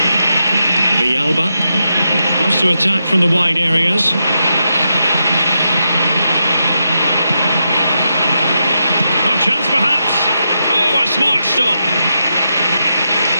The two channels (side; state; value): both; inverted; correlation -0.85